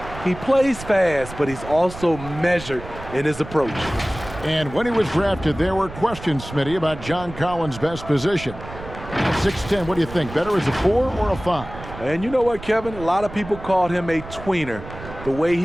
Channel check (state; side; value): noise; right; rumble, 13 dB below the sound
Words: he plays fast, but he's also measured in his approach. And when he was drafted, there were questions, Smitty, about John Collins' best position. 6'10", what do you think? Better as a 4 or a 5? And you know what, Kevin? A lot of people called him a tweener. The way